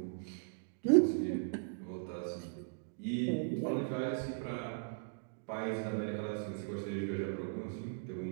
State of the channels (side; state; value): left; silent; digital silence